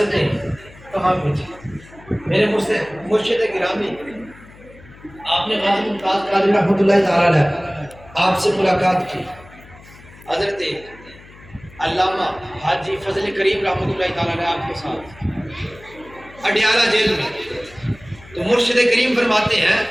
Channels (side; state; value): left; noise; hum, 22 dB below the sound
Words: کہاں پہنچی؟ میرے مرشد گرامی، آپ نے غازی ممتاز قادری رحمۃ اللہ تعالیٰ علیہ آپ سے ملاقات کی، حضرت علامہ حاجی فضل کریم رحمۃ اللہ تعالیٰ علیہ آپ کے ساتھ اڈیالہ جیل میں، تو مرشد کریم فرماتے ہیں